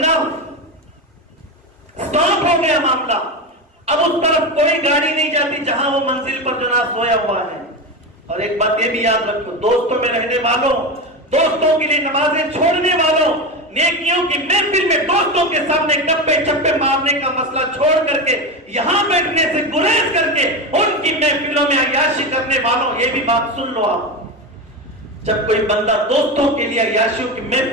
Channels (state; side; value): normal; both; correlation 0.19